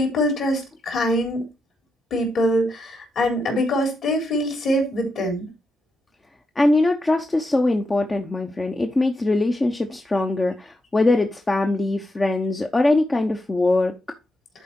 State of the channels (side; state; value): both; normal; correlation 0.84